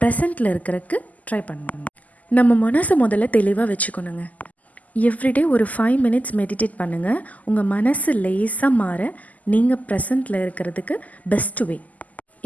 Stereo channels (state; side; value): late; right; 0.077 ms